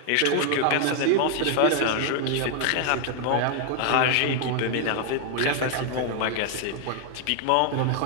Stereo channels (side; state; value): both; different; correlation 0.00